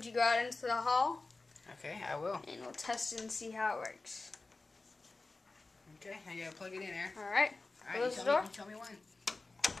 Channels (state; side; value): quieter; right; 3.5 dB